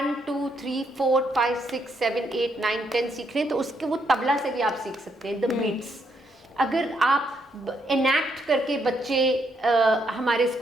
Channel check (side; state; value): both; normal; correlation 0.75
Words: 2 3 4 5 6 7 8 9 10 सीख रहे हैं तो उसके वो तबला से भी आप सीख सकते हैं, द बीट्स. अगर आप एनैक्ट करके बच्चे हमारे